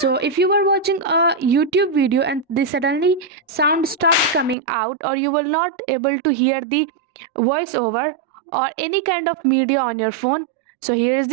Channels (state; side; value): drops out; left; at 4.5 s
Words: if you were watching a YouTube video and the suddenly sound stopped coming out, or you were not able to hear the voiceover or any kind of media on your phone, so here is